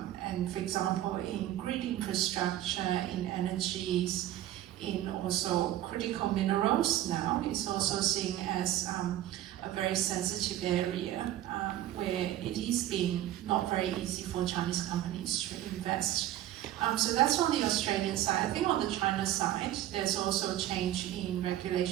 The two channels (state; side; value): quieter; left; 13.1 dB